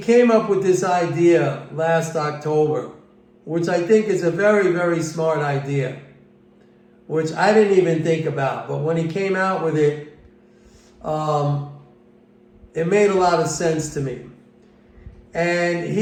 came up with this idea last October, which I think is a very, very smart idea, which I didn't even think about. But when he came out with it, it made a lot of sense to me. And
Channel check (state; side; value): identical; both; correlation 1.00